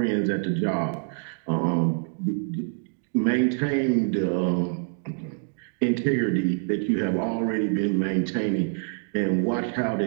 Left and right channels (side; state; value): left; silent; 59 dB below the other